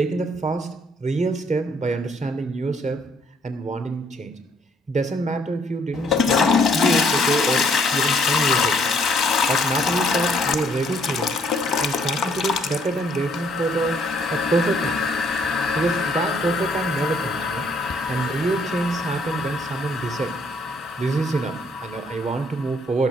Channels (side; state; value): both; normal; correlation 0.66